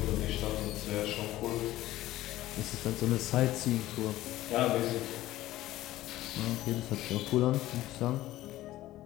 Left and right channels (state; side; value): quieter; right; 15.6 dB